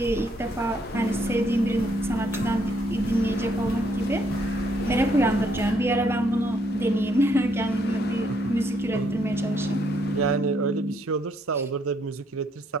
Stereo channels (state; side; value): normal; both; correlation 0.70